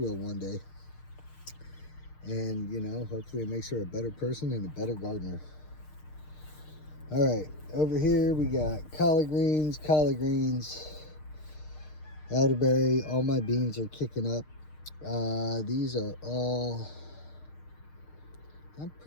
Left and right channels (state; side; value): late; right; 6.6 ms